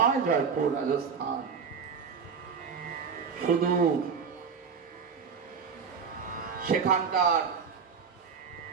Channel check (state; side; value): quieter; left; 6.1 dB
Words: জয়পুর? রাজস্থান। শুধু সেখানকার